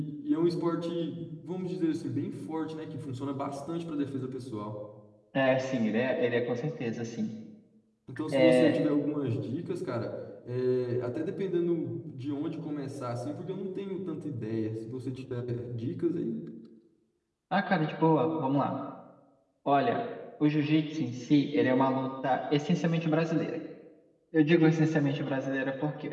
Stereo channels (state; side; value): identical; both; correlation 1.00